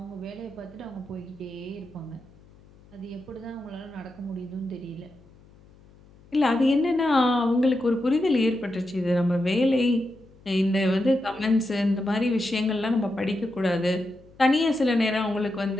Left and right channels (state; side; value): noise; left; hum, 26 dB below the sound